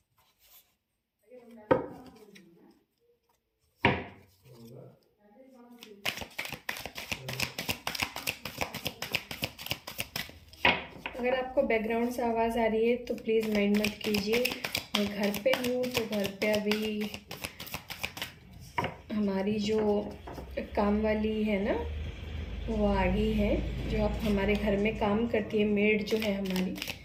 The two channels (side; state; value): both; identical; correlation 1.00